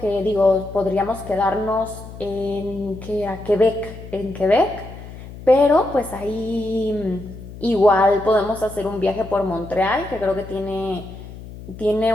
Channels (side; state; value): left; noise; hum, 14 dB below the sound